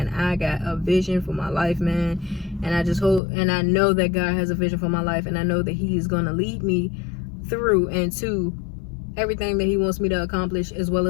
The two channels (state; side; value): drops out; right; at 3.2 s